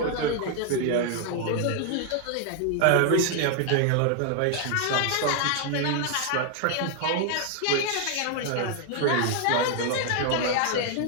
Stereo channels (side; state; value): both; different; correlation 0.00